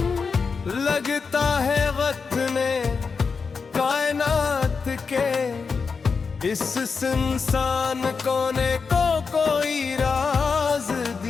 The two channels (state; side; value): quieter; right; 5.1 dB